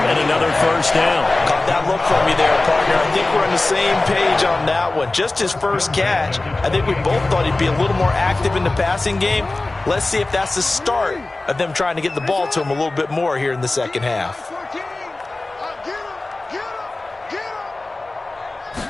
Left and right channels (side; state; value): right; quieter; 3.0 dB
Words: and another first down. Caught that look from you there, partner. I think we're on the same page on that one. Just his first catch, I think we both thought he'd be a little more active in the passing game. Let's see if that's the start of them trying to get the ball to him a little bit more here in the second half.